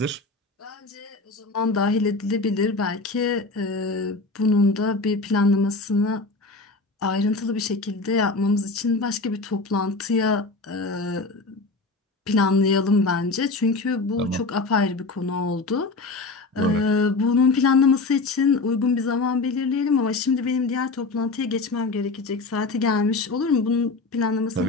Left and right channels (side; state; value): right; quieter; 3.6 dB